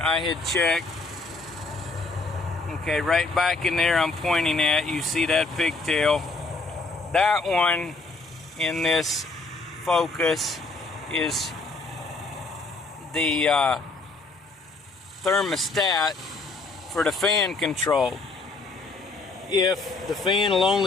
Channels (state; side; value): quieter; right; 3.5 dB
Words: I had checked. Okay, right back in there I'm pointing at, you see that pigtail. That one in this Focus is the thermostat for the fan control. If the fan will